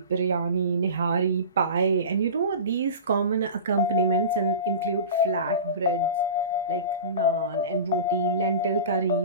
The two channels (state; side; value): inverted; both; correlation -0.32